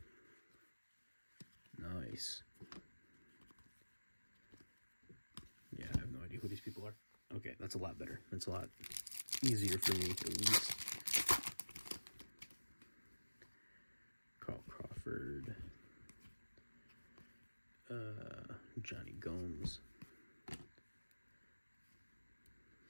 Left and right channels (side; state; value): both; inverted; correlation -1.00